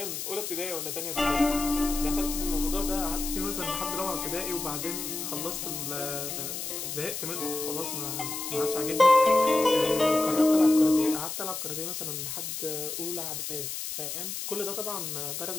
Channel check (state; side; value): noise; left; hiss, 5 dB below the sound